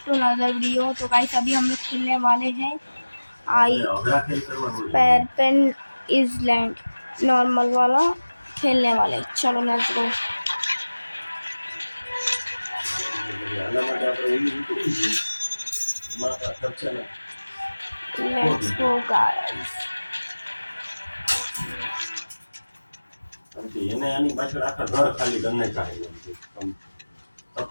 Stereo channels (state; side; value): inverted; both; correlation -1.00